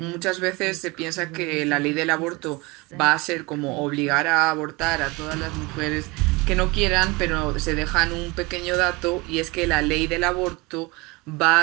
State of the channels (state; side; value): quieter; left; 24.8 dB